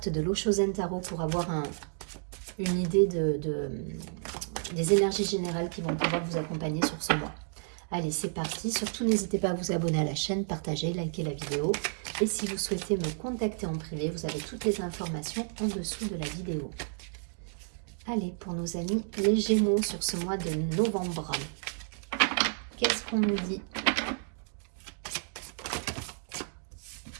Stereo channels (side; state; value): left; silent; 57 dB below the other